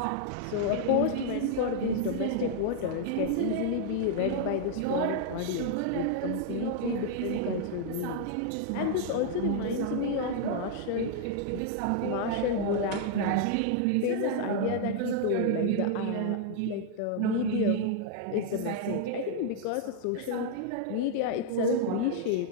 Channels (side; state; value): both; different; correlation -0.01